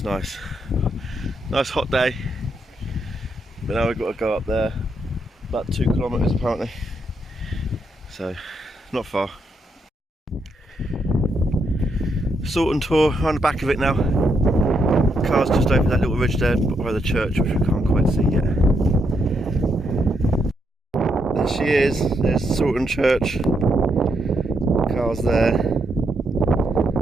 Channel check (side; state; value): both; normal; correlation 0.79